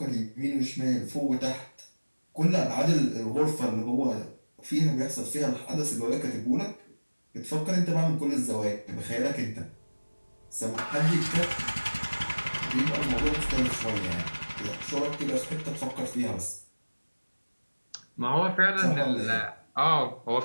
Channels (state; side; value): inverted; both; correlation -1.00